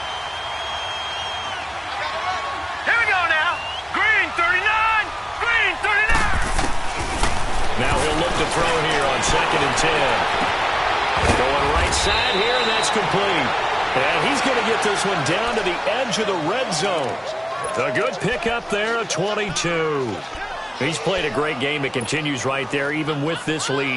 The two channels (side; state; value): both; identical; correlation 1.00